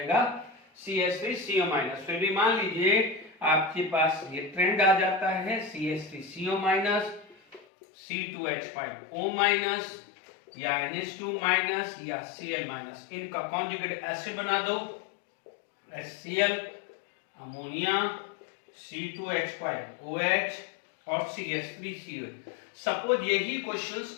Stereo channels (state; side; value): drops out; right; at 7.7 s